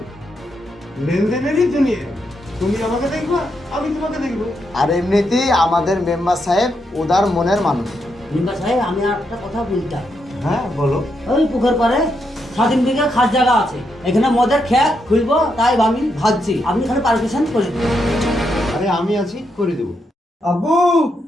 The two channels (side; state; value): both; normal; correlation 0.81